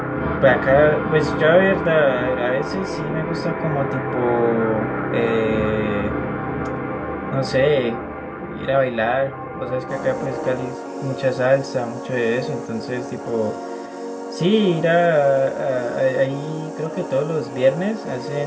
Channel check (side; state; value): both; identical; correlation 1.00